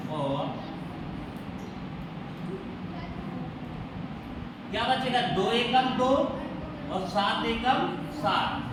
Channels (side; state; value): both; identical; correlation 1.00